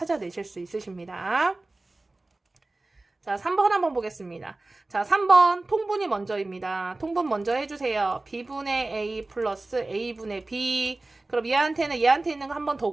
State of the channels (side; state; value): left; quieter; 3.0 dB